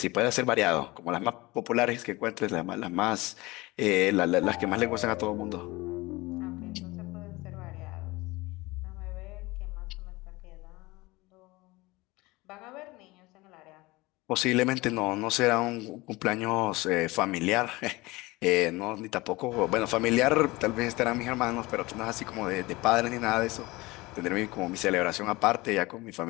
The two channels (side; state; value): right; quieter; 21.6 dB